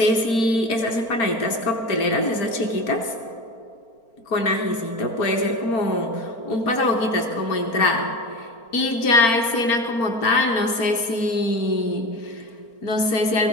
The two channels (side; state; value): right; late; 4.4 ms